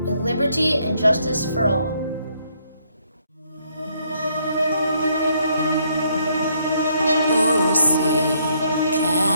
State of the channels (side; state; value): both; inverted; correlation -0.71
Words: with liberty and justice for all. Oh, say,